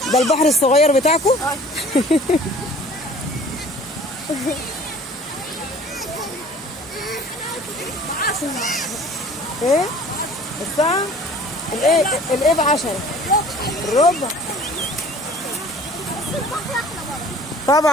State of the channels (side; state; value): both; normal; correlation 0.49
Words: ده البحر الصغير بتاعكم؟ ايه؟ الساعة؟ الايه ب10 الربع.